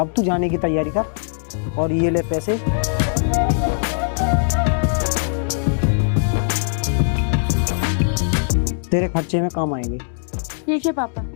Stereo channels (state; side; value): silent; right; 65 dB below the other